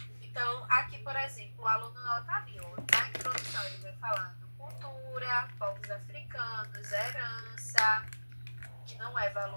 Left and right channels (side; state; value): both; inverted; correlation -1.00